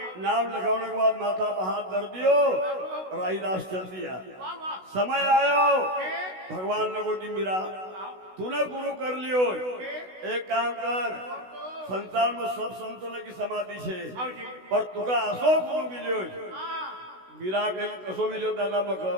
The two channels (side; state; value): left; late; 16 ms